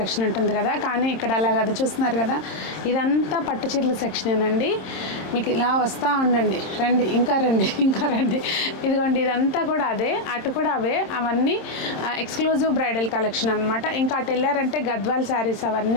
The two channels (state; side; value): late; right; 26 ms